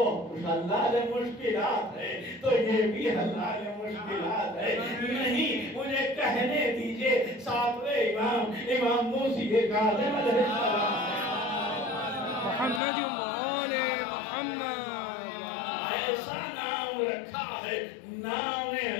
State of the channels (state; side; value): drops out; right; at 12.8 s